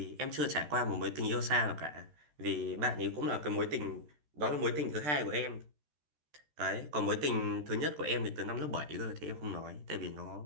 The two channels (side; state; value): left; late; 13 ms